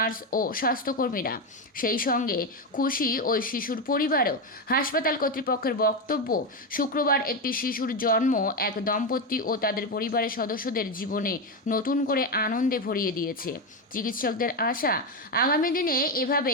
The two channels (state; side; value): normal; both; correlation 0.11